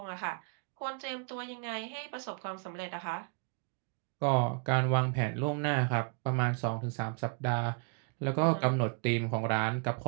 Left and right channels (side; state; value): left; quieter; 38.8 dB